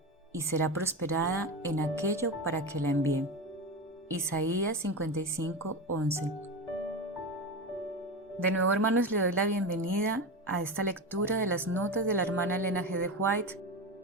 y será prosperada en aquello para que la envíe. Isaías 55:11. De nuevo, hermanos, le doy la bienvenida a esta lectura de las notas de la hermana Elena G. de White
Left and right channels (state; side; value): normal; both; correlation 0.21